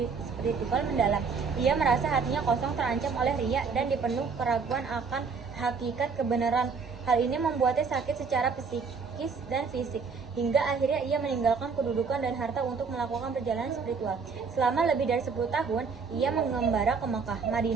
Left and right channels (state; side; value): quieter; left; 5.3 dB